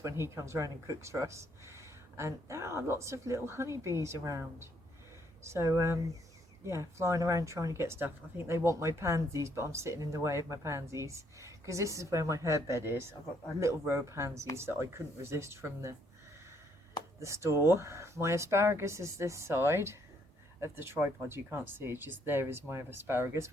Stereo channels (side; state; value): both; normal; correlation 0.69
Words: when he comes around and cooks for us. And there are lots of little honeybees around. So yeah, flying around trying to get stuff. I think they want my pansies, but I'm sitting in the way of my pansies because this is where my herb bed is. I've got a little row of pansies that I couldn't resist from the store. My asparagus is this side of the tripod. You can't see it, just there is my asparagus,